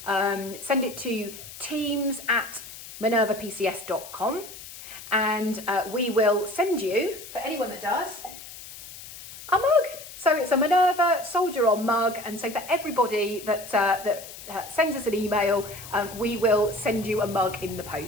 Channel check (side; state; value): left; noise; hiss, 14 dB below the sound